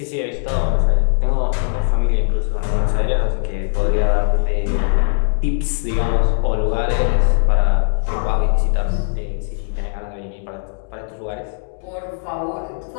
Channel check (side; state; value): right; silent; 66 dB below the other